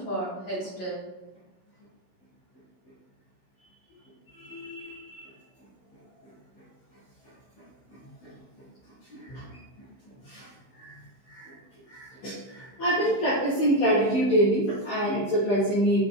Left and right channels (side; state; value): right; late; 16 ms